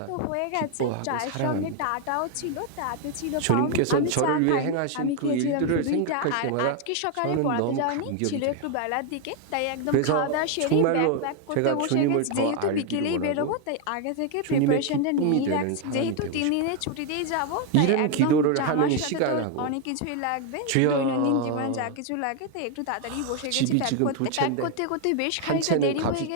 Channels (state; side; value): different; both; correlation 0.01